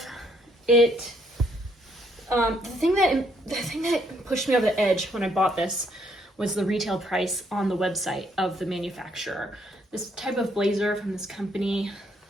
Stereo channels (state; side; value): normal; both; correlation 0.70